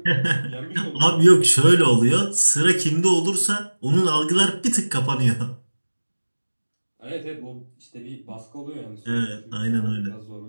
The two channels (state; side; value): inverted; both; correlation -1.00